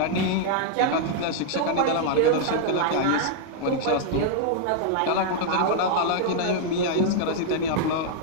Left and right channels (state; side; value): different; both; correlation -0.01